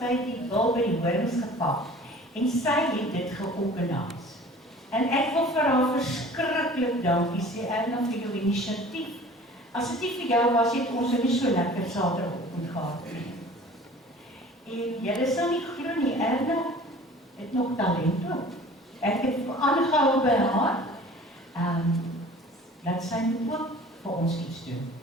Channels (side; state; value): both; normal; correlation 0.46